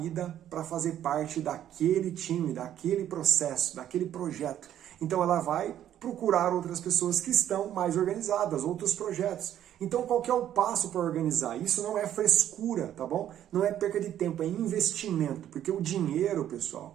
para fazer parte daquele time, daquele processo, daquele projeto. Então ela vai procurar outras pessoas que estão mais organizadas, outros projetos. Então qual que é o passo para organizar? Isso não é frescura, tá bom? Não é perca de tempo, é investimento. Porque o dinheiro,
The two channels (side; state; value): left; quieter; 11.1 dB